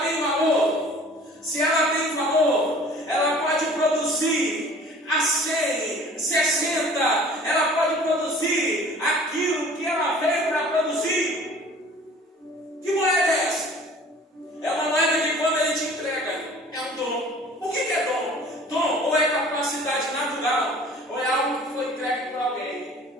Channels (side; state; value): both; normal; correlation 0.48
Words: tem valor. Se ela tem valor, ela pode produzir a 100, 60, ela pode produzir aquilo que ela veio para produzir. Que moeda é essa? É uma moeda que quando ele te entrega, é um dom. O que é dom? Dom ou é capacidade natural, ou é algo que foi entregue para